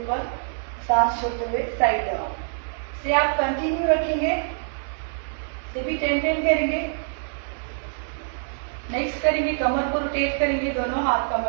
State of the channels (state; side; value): silent; left; 60 dB below the other